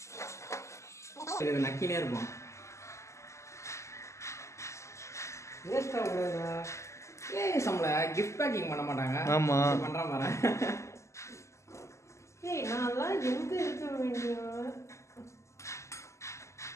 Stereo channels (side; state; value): right; late; 0.14 ms